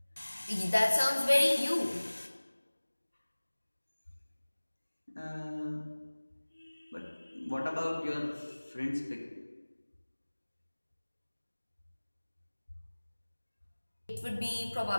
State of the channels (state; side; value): inverted; both; correlation -1.00